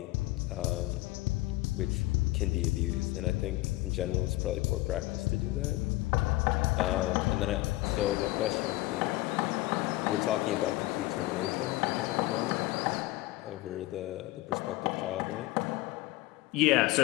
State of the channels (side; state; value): right; quieter; 19.2 dB